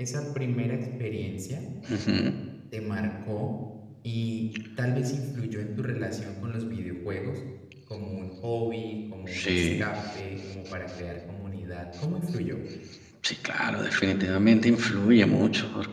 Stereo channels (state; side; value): identical; both; correlation 1.00